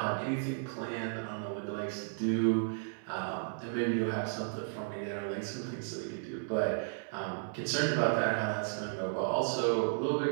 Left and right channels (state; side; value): silent; left; 55 dB below the other